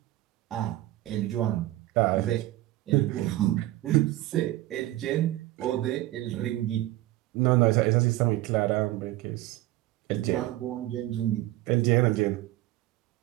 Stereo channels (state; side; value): quieter; left; 16.4 dB